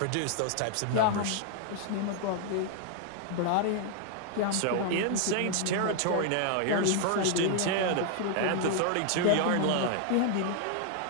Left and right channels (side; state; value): both; different; correlation 0.00